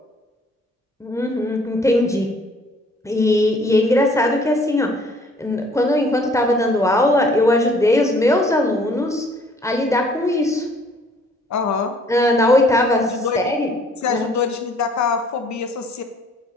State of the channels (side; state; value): both; normal; correlation 0.59